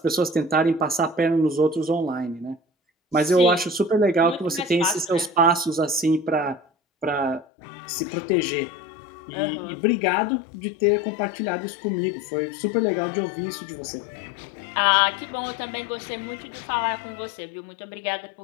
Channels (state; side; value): drops out; right; at 7.5 s